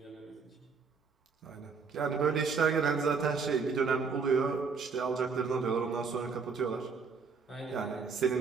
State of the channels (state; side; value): quieter; left; 5.2 dB